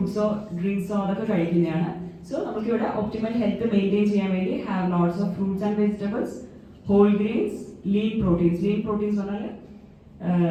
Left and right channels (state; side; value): identical; both; correlation 1.00